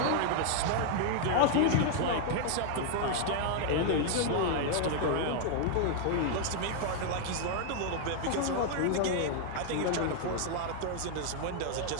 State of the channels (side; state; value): both; different; correlation 0.00